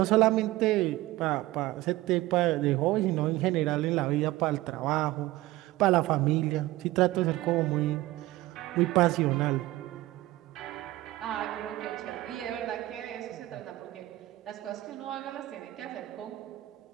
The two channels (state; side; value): quieter; left; 17.4 dB